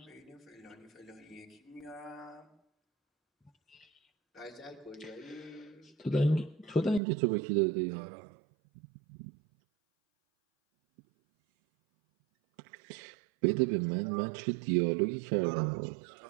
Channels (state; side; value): drops out; left; at 7.0 s